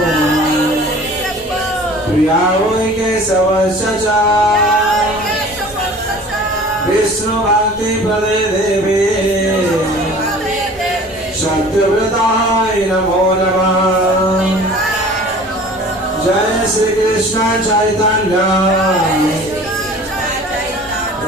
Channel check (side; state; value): both; normal; correlation 0.45